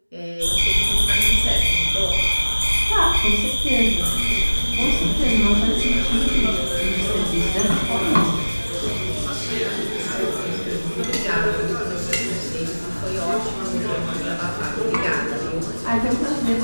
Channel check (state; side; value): inverted; both; correlation -1.00